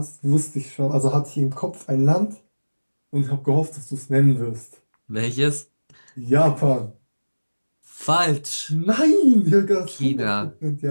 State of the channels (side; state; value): both; inverted; correlation -1.00